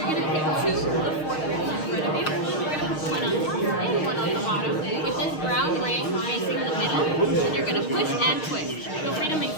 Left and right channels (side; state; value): right; late; 6.4 ms